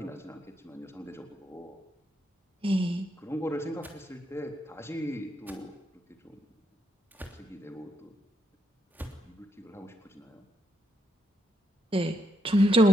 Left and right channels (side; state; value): both; normal; correlation 0.79